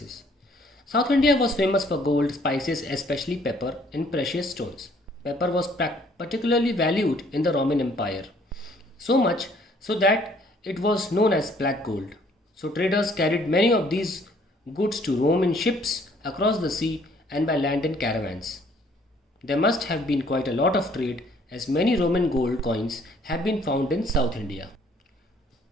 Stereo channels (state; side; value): normal; both; correlation 0.61